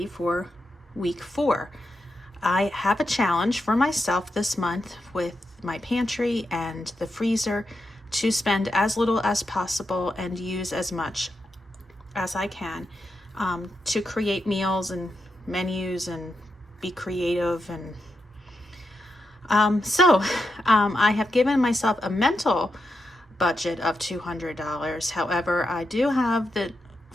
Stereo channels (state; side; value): normal; both; correlation 0.86